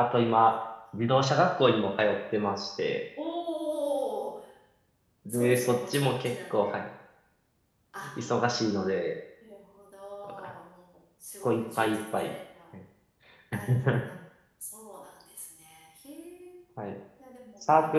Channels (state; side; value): identical; both; correlation 1.00